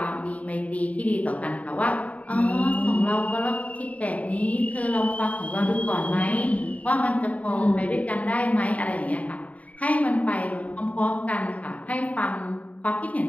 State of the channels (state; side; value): late; right; 0.069 ms